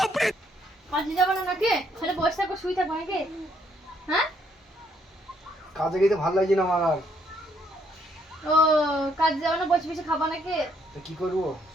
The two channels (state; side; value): normal; both; correlation 0.70